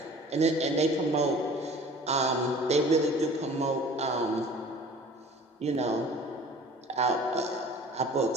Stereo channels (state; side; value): normal; both; correlation 0.46